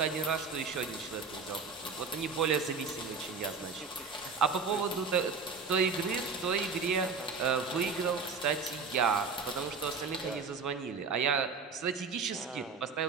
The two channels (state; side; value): quieter; left; 4.9 dB